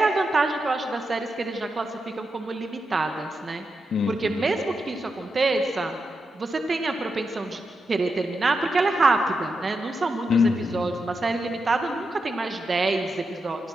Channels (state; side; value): normal; both; correlation 0.87